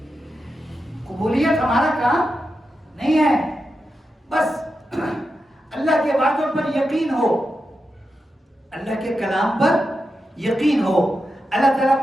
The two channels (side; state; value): both; normal; correlation 0.88